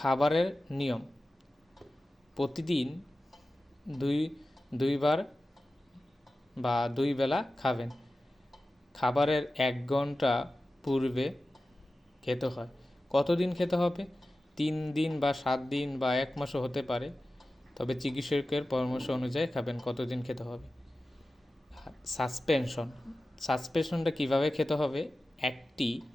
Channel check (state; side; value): normal; both; correlation 0.95